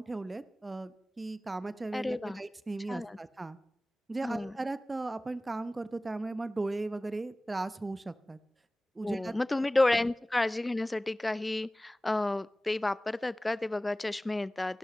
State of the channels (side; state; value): both; normal; correlation 0.98